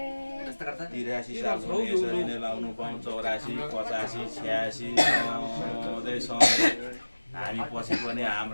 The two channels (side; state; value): both; inverted; correlation -1.00